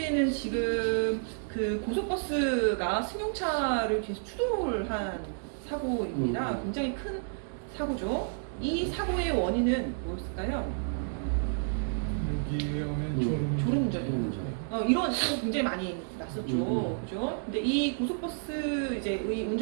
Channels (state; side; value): silent; left; digital silence